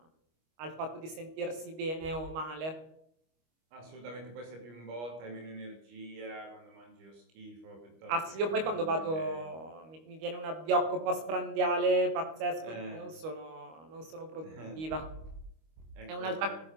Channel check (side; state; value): left; late; 25 ms